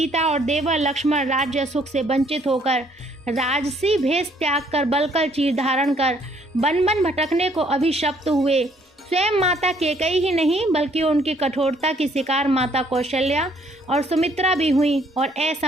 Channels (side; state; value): both; normal; correlation 0.65